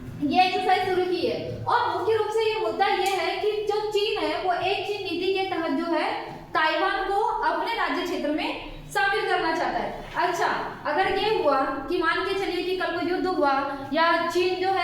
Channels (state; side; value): identical; both; correlation 1.00